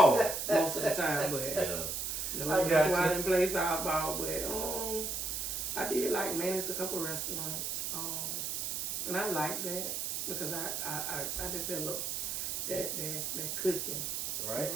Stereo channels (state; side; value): noise; right; hiss, 2 dB below the sound